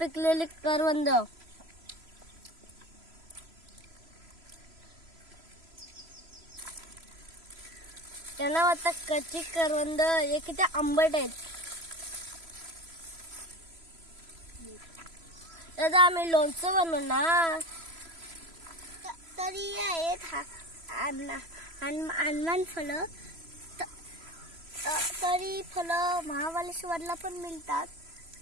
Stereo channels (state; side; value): late; left; 3.0 ms